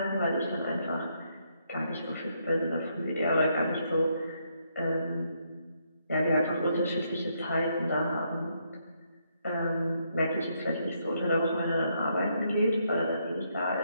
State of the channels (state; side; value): inverted; both; correlation -0.75